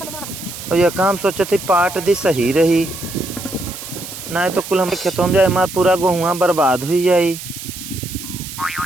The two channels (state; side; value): noise; right; hiss, 11 dB below the sound